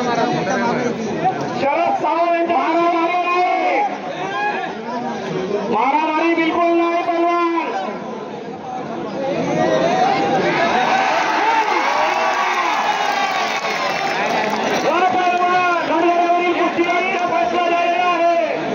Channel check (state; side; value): identical; both; correlation 1.00